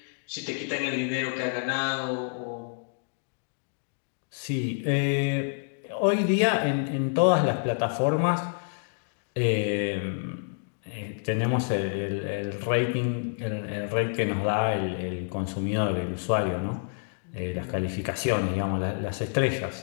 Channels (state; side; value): silent; right; digital silence